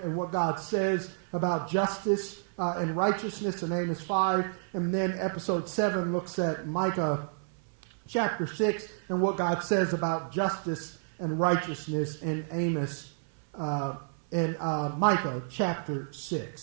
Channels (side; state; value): left; silent; 58 dB below the other